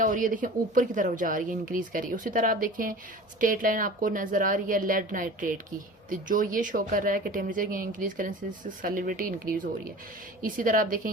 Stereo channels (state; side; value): normal; both; correlation 0.39